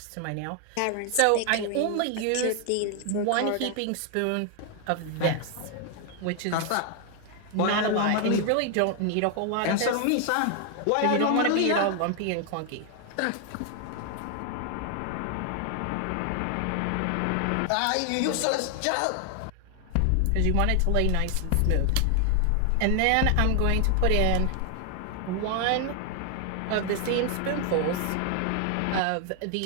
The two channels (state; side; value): different; both; correlation 0.00